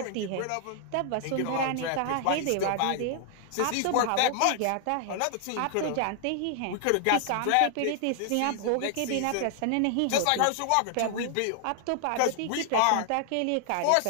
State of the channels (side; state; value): both; different; correlation 0.00